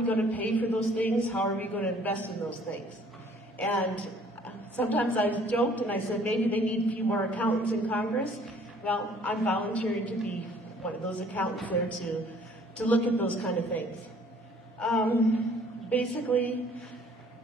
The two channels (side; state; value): both; normal; correlation 0.57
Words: going to pay for those things? How are we going to invest in those things? And sometimes I've joked and I said maybe they need a few more accountants in Congress. Well, I'm volunteering to be one of those accountants there to look at those kind of things. Basically,